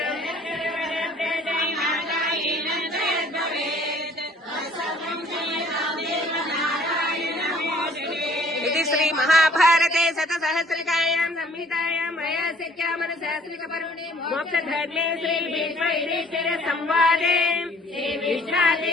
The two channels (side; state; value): both; normal; correlation 0.56